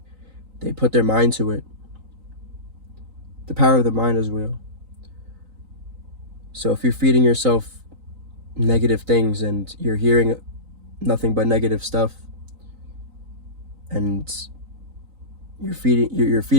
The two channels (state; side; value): late; left; 3.9 ms